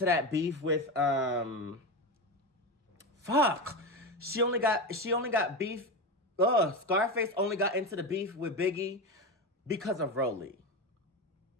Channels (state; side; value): normal; both; correlation 0.18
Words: that beef with, She only got beef, Scarface only got into the beef with Biggie because of Rolly.